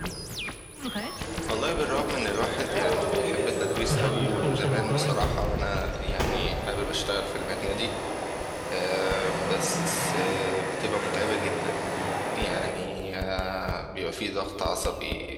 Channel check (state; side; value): identical; both; correlation 1.00